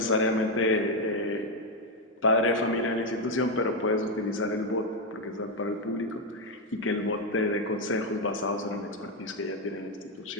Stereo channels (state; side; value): normal; both; correlation 0.04